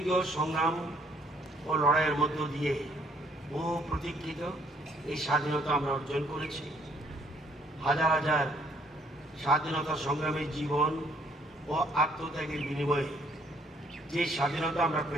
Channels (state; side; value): normal; both; correlation 0.64